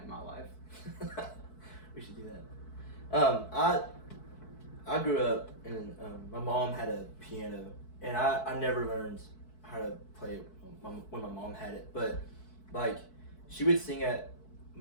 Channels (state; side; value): late; right; 4.6 ms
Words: in my life. We should do that. I grew up and my mom had a piano, and I never learned how to play it when my mom had it, but like she would sing at